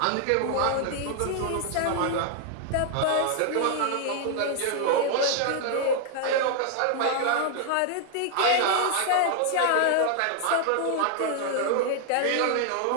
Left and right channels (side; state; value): both; different; correlation 0.00